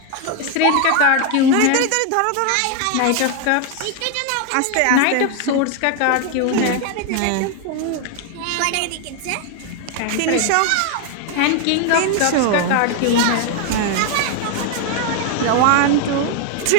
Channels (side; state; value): both; different; correlation 0.01